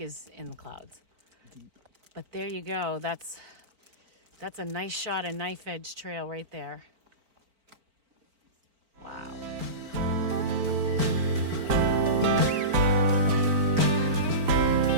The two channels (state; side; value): late; left; 4.4 ms